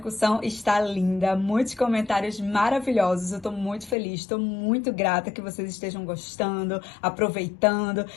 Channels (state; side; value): drops out; right; at 4.0 s